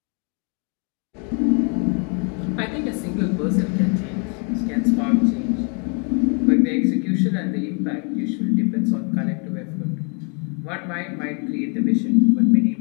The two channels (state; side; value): quieter; right; 37.0 dB